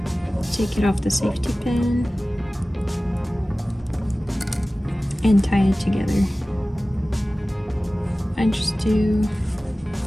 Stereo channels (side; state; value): both; normal; correlation 0.97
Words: take it off the safety pin and tie it together. I just do